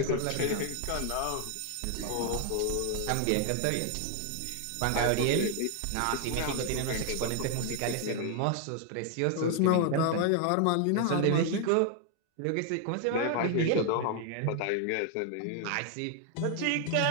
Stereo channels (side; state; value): both; different; correlation 0.00